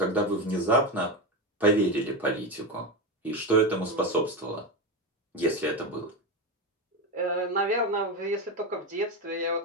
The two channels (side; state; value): both; normal; correlation 0.16